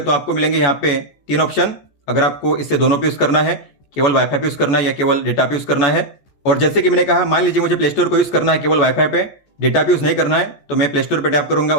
तो आपको मिलेंगे यहाँ पे 3 ऑप्शन, अगर आपको इससे दोनों पे यूज करना है, केवल वाईफाई पे यूज करना है या केवल डेटा पे यूज करना है। और जैसे कि मैंने कहा, मान लीजिए मुझे प्ले स्टोर को यूज करना है केवल वाईफाई पे, डेटा पे यूज नहीं करना है, तो मैं प्ले स्टोर पे टैप करूंगा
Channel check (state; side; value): late; right; 14 ms